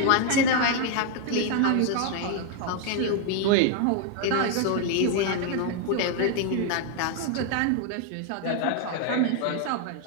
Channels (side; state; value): both; different; correlation 0.00